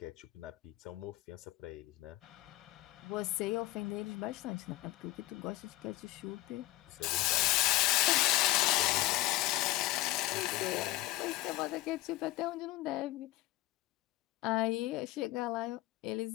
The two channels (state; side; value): quieter; right; 17.9 dB